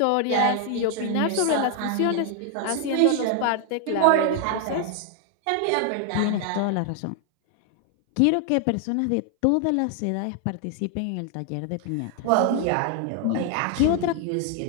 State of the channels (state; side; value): different; both; correlation 0.00